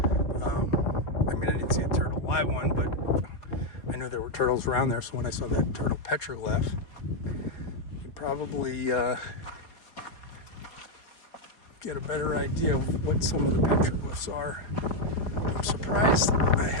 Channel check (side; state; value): right; late; 4.5 ms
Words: I mean, I didn't see a turtle live one, but I knew there were turtles around there. So when I saw that turtle petroglyph, probably get a better idea of what some of the petroglyphs are. I'm surprised I